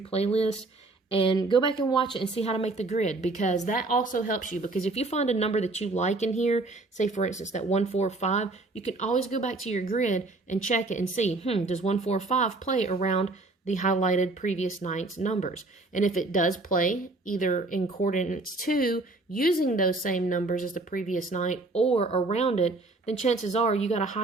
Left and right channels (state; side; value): quieter; left; 3.1 dB